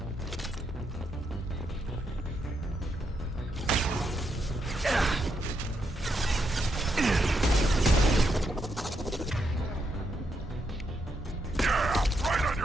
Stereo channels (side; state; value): both; normal; correlation 0.80